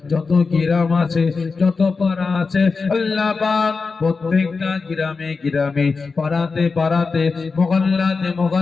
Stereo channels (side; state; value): right; quieter; 4.5 dB